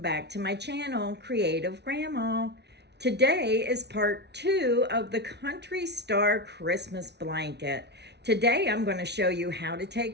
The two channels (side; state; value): left; late; 0.50 ms